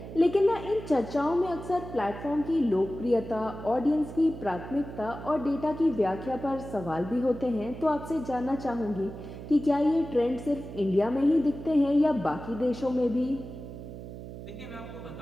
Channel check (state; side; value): noise; right; hum, 11 dB below the sound